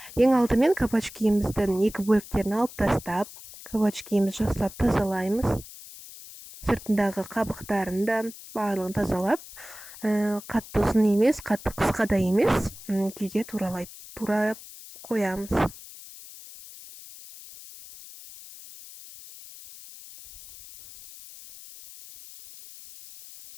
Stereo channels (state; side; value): noise; left; hiss, 16 dB below the sound